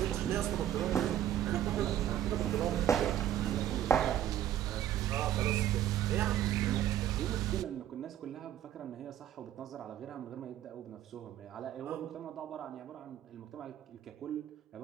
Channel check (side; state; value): left; quieter; 11.5 dB